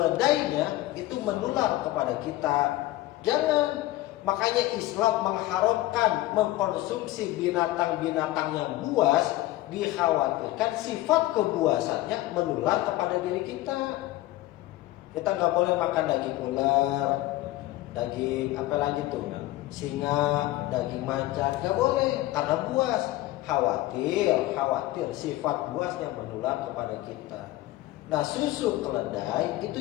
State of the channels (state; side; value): quieter; right; 16.9 dB